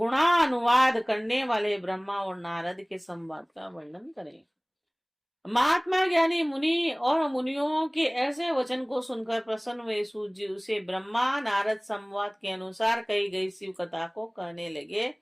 करने वाले ब्रह्मा और नारद के संवाद का वर्णन करें। महात्मा ज्ञानी मुनि और मुनियों के ऐसे वचन को सुनकर प्रसन्न हुए सूत जी से ब्रह्मा नारद संवाद के अनुसार कही गई शिव कथा को कहने लगे।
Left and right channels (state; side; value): identical; both; correlation 1.00